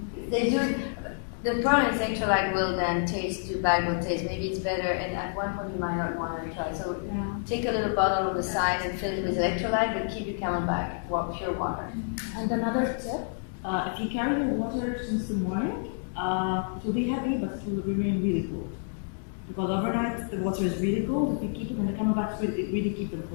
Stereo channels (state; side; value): silent; right; digital silence